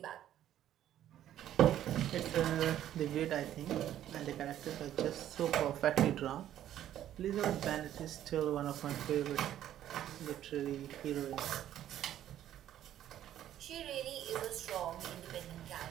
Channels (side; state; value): left; quieter; 11.7 dB